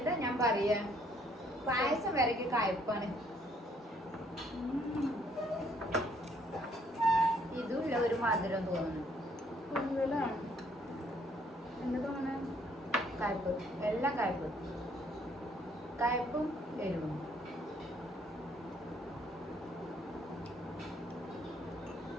ഞാൻ പറയാ, പായസം വരയ്ക്ക് കയ്പ്പാണ്. ഇതുമില്ല ഒരു മധുരം തോന്നുന്നു. കൂടുതലാണ് എന്താ തോന്നണേ? കയ്പ്പ്, എല്ലാം കയ്പ്പ്, കയ്പ്പും എരിവും.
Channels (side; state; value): both; normal; correlation 0.65